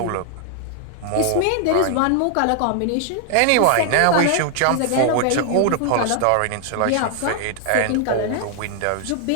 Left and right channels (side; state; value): both; different; correlation 0.00